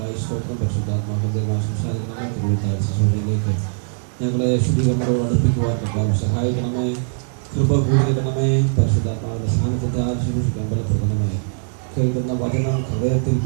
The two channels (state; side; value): silent; left; digital silence